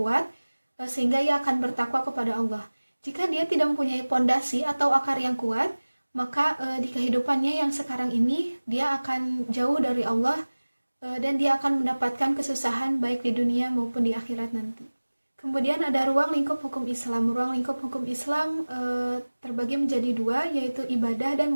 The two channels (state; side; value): inverted; both; correlation -1.00